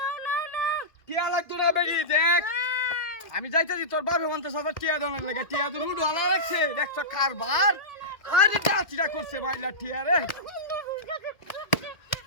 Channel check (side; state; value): right; late; 2.0 ms